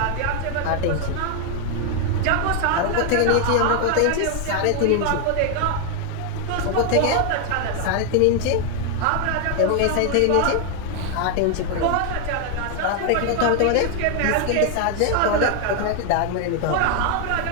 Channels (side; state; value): both; different; correlation 0.00